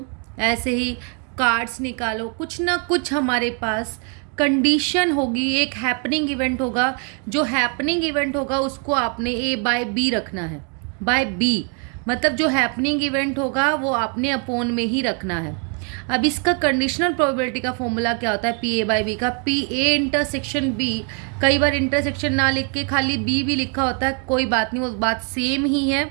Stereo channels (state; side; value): quieter; left; 39.1 dB